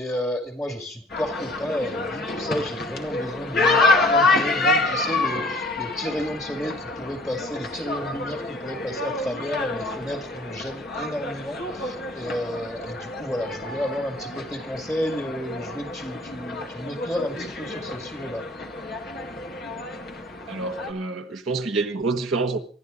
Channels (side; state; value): both; normal; correlation 0.52